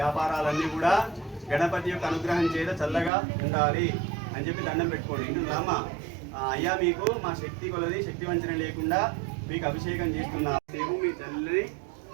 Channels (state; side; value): drops out; left; at 3.1 s